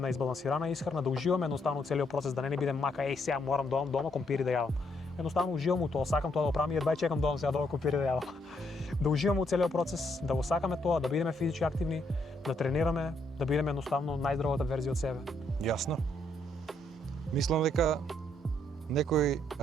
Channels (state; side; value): normal; both; correlation 0.73